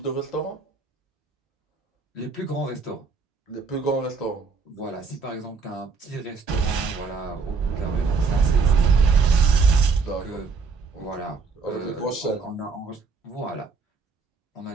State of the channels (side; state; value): left; quieter; 4.9 dB